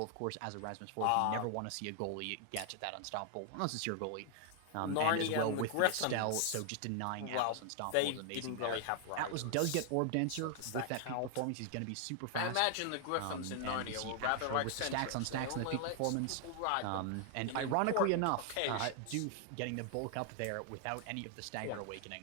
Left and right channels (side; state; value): both; different; correlation 0.00